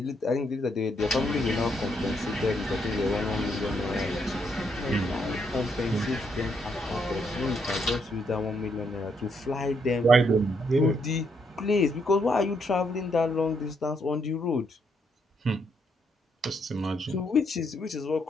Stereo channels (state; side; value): normal; both; correlation 0.75